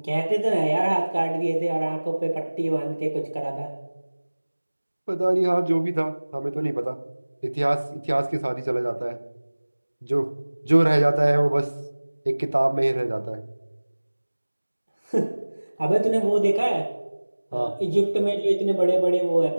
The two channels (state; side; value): inverted; both; correlation -1.00